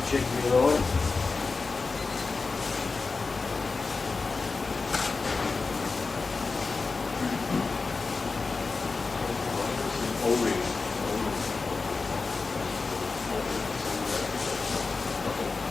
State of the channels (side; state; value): right; quieter; 4.1 dB